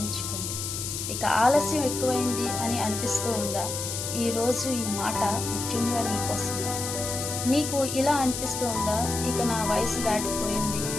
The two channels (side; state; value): left; noise; hiss, 4 dB below the sound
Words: ఇక ఆలస్యం ఎక్కువైంది అని అనిపిస్తూ ఉందా? ఈరోజు ఈ మాట ముఖ్యంగా నీకోసం. నీకు ఇలా అనిపిస్తూ ఉందా, ఇక నా వయసు దాటిపోయింది,